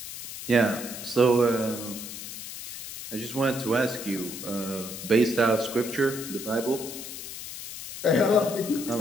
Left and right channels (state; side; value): noise; left; hiss, 10 dB below the sound